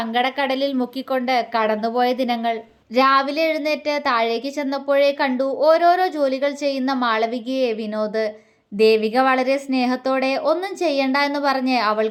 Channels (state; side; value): identical; both; correlation 1.00